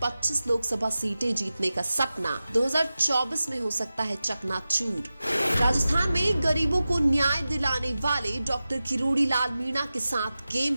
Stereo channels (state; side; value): inverted; both; correlation -0.94